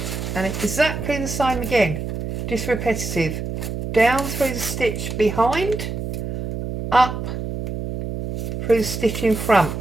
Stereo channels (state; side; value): noise; right; hum, 5 dB below the sound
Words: and it's exactly the same again, just repetitive, down through the stitch behind, up through the stitch in front,